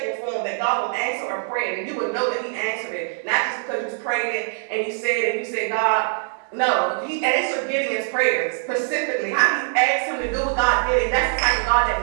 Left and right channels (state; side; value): silent; left; digital silence